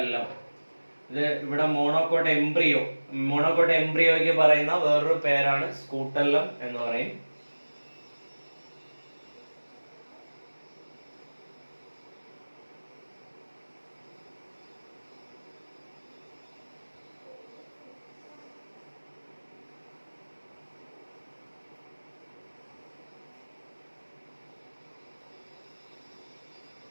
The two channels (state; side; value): inverted; both; correlation -1.00